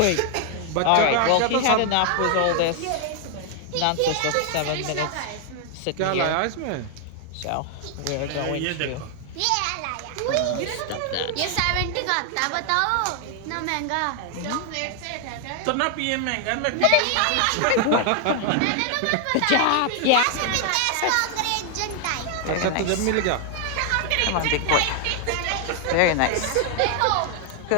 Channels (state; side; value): different; both; correlation 0.00